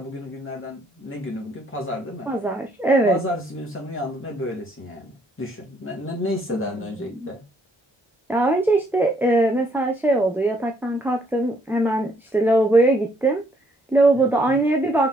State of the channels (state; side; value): normal; both; correlation 0.68